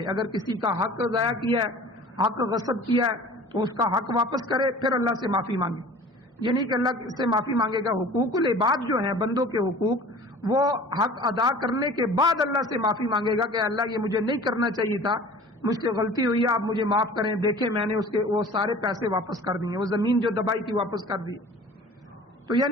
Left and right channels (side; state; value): both; normal; correlation 0.44